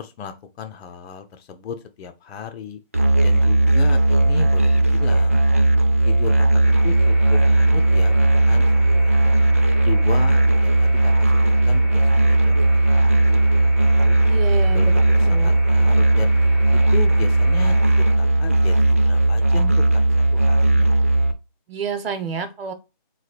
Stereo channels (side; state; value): both; inverted; correlation -0.96